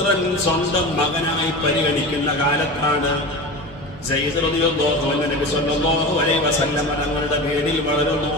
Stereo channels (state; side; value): normal; both; correlation 0.29